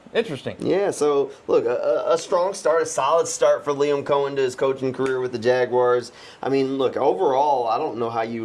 Interesting. Yeah, so look, a strong start, a solid start for Liam Coen to his coaching career with the Jaguars. I mean, look, overall, I don't know how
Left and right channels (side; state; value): both; identical; correlation 1.00